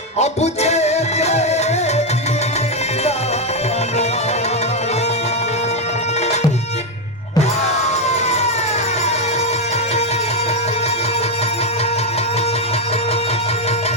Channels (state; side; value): normal; both; correlation 0.05